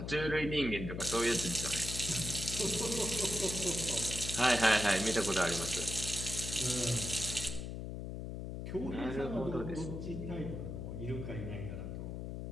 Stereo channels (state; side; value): noise; left; hum, 6 dB below the sound